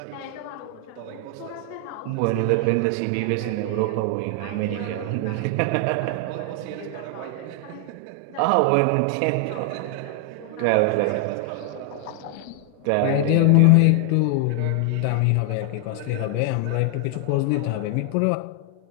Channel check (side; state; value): both; different; correlation 0.00